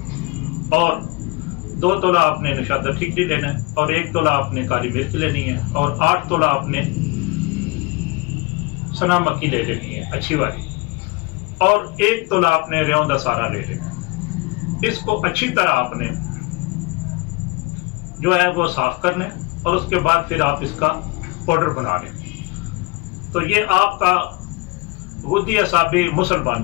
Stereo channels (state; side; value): quieter; right; 24.2 dB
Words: اور 2 تولہ آپ نے نشادر ٹھیکری لینا ہے اور 1 تولہ آپ نے کالی مرچ لینی ہے اور 8 تولہ آپ نے سنا مکی لے لینی ہے اچھی والی اور 1 تولہ آپ نے ریون دا سارا لے لینا ہے۔ اس کو اچھی طرح آپ نے جو ہے وہ صاف کرنا ہے اور اس کے بعد پھر آپ اس کا پاؤڈر بنا لیں تو یہ آپ کا غدی اعصابی مسل